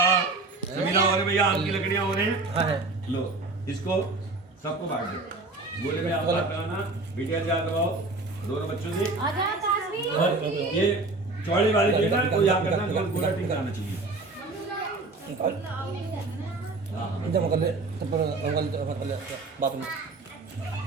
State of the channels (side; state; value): left; quieter; 3.4 dB